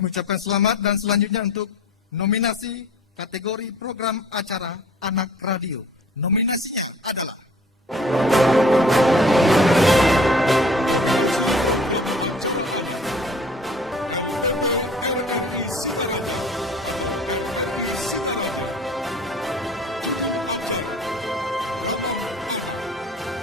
ucapkan selamat dan selanjutnya untuk nominasi kategori program acara anak radio. Nominasinya adalah Nominasi program acara anak LPP RRI Singaraja atau RRI Singaraja. Judul acara Ramah Anak.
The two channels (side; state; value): both; normal; correlation 0.48